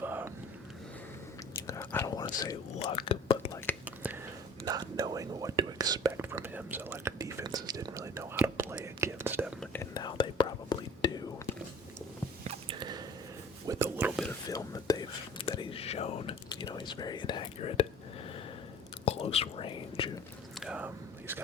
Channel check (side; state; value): both; normal; correlation 0.46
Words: I don't want to say luck, but not knowing what to expect from him. So defenses didn't really know how to play against him, and now they probably do. With a little bit of film that he's shown, he's very inaccurate, close range. He's